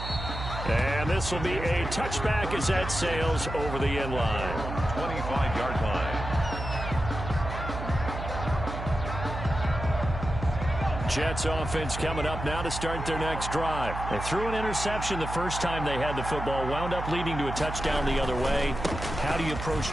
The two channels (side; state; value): right; noise; hum, 7 dB below the sound